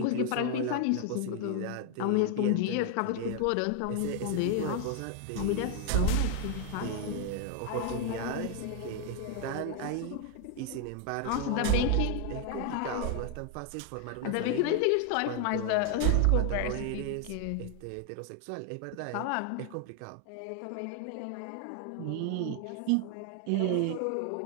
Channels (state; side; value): different; both; correlation 0.00